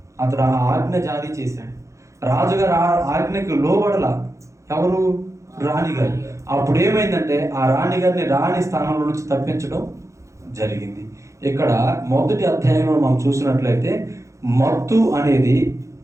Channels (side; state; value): left; late; 0.15 ms